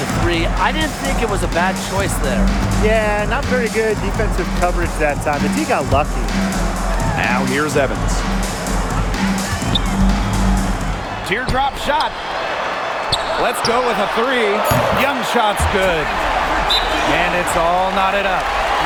3. I didn't think it was a bad choice there. Yeah, not very good defensive coverage that time. The team got lucky. Now here's Evans. Teardrop shot. Let's go with a 3. Young shot's good. And it's all knotted up.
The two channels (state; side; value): identical; both; correlation 1.00